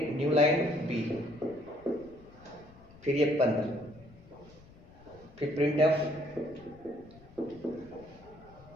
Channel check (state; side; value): noise; left; rumble, 22 dB below the sound